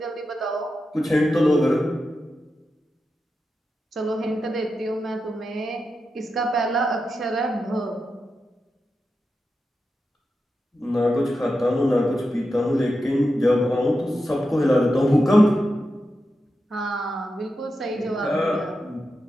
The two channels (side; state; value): both; normal; correlation 0.89